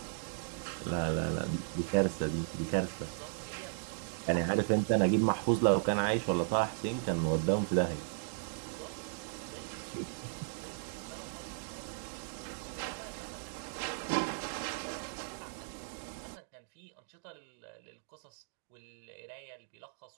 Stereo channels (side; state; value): left; silent; digital silence